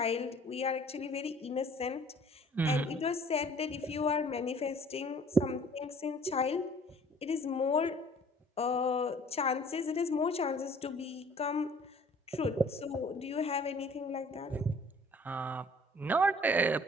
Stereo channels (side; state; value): both; normal; correlation 0.53